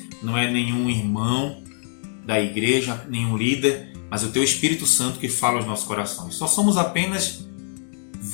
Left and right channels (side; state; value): right; silent; digital silence